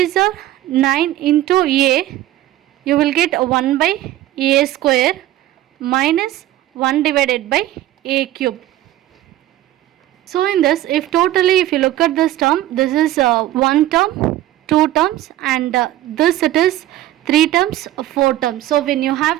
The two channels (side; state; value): left; quieter; 14.4 dB